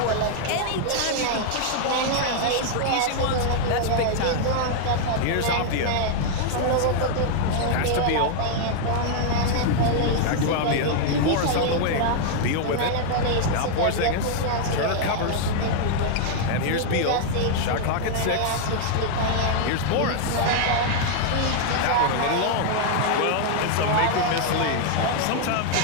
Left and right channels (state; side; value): different; both; correlation -0.01